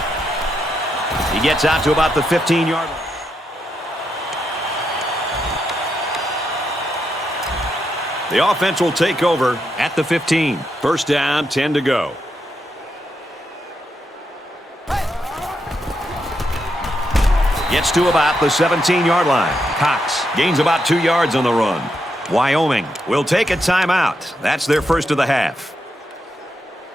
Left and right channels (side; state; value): both; normal; correlation 0.82